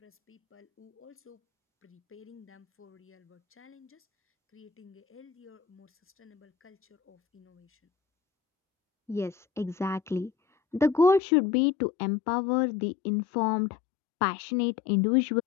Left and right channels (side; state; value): right; drops out; at 11.2 s